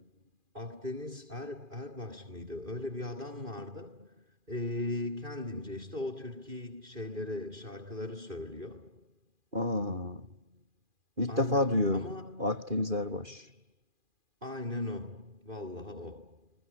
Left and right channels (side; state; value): left; late; 2.4 ms